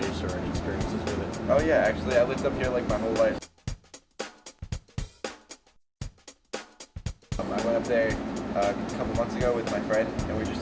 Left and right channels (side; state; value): both; identical; correlation 1.00